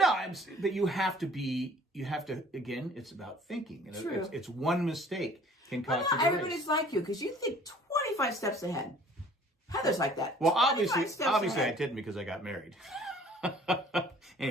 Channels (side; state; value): both; normal; correlation 0.52